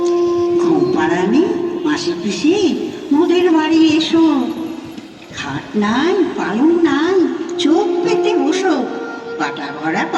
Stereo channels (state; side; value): identical; both; correlation 1.00